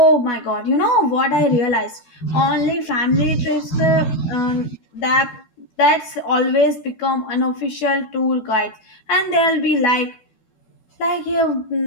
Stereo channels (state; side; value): late; right; 12 ms